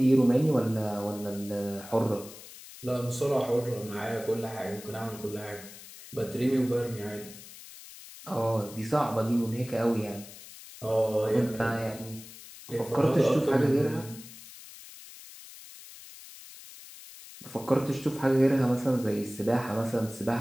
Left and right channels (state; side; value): noise; left; hiss, 17 dB below the sound